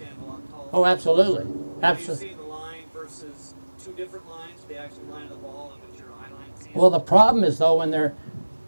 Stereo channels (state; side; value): inverted; both; correlation -1.00